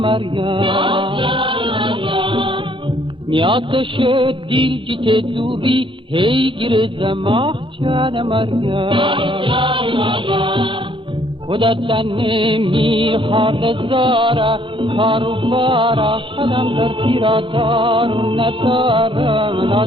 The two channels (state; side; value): late; left; 0.25 ms